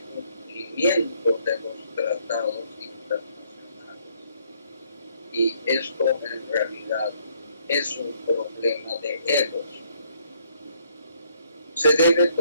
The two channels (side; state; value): both; inverted; correlation -0.66